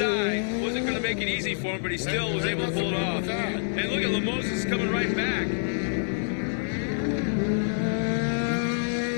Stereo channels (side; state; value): right; silent; 60 dB below the other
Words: Wasn't going to make it easy for him, but he still was able to pull it off. And look at Lemosis coming right back.